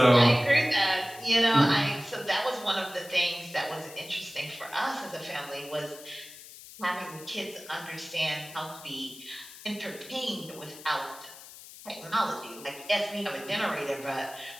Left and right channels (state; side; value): noise; left; hiss, 17 dB below the sound